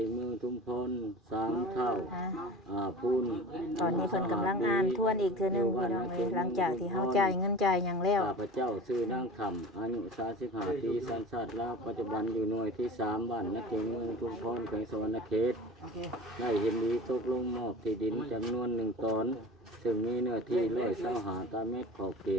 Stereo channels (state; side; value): normal; both; correlation 0.37